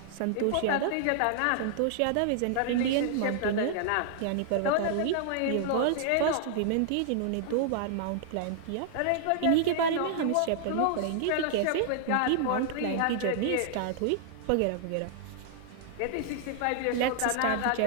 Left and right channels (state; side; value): different; both; correlation -0.01